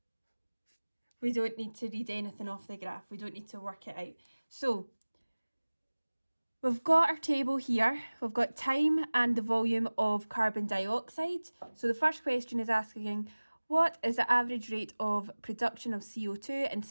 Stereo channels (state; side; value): inverted; both; correlation -1.00